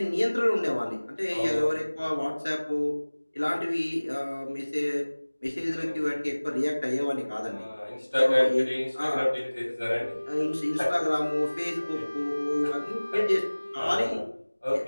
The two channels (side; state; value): both; inverted; correlation -1.00